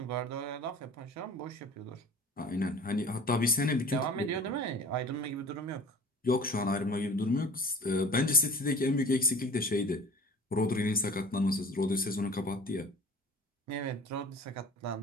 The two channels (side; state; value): both; normal; correlation 0.43